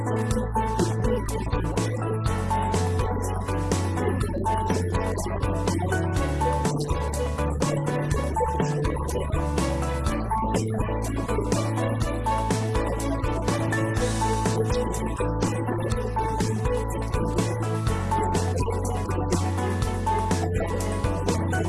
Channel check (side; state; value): both; identical; correlation 1.00